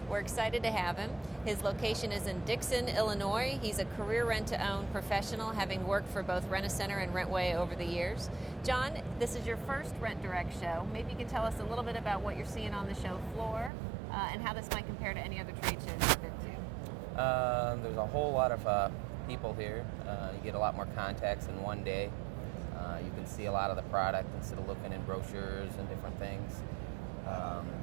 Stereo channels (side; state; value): left; drops out; at 13.7 s